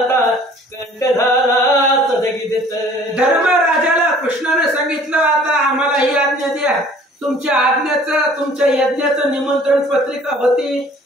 कंठ झाला सदगीत. धर्मराजाला कृष्णाने सांगितलं आता आम्हाला ही आज्ञा द्या, तुमच्या आज्ञाचं तुमच्या यज्ञाचं निमंत्रण पत्रिका होती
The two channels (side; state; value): both; normal; correlation 0.52